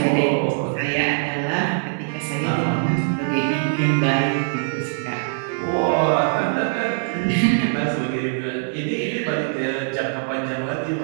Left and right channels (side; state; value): left; silent; digital silence